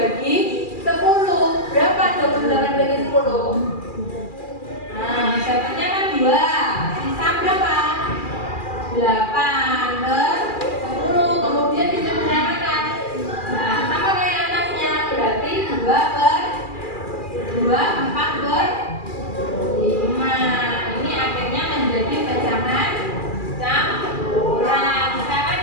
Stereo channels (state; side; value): late; right; 2.4 ms